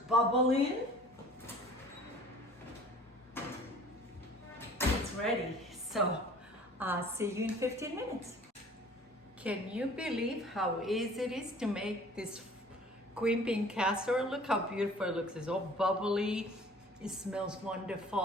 It's ready. So I'll see you in 15 minutes. Can you believe how easy it is to make this green bean casserole? Look how beautiful it looks. It's all bubbly. It smells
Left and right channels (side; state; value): both; normal; correlation 0.49